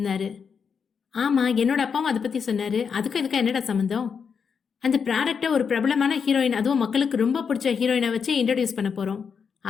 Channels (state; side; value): quieter; right; 6.3 dB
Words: ஆமாம், என்னோட அப்பாவும் அதை பற்றி சொன்னார். அதுக்கும் இதுக்கும் என்னடா சம்மந்தம்? அந்த ப்ராடக்டை ஒரு பிரபலமான ஹீரோயின், அதுவும் மக்களுக்கு ரொம்ப பிடிச்ச ஹீரோயினை வச்சு இன்ட்ரடியூஸ் பண்ண போகிறோம்.